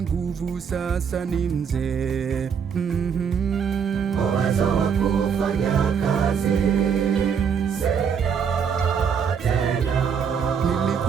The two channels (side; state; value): left; quieter; 6.9 dB